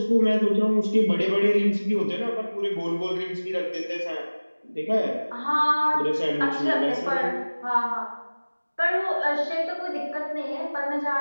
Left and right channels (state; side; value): inverted; both; correlation -1.00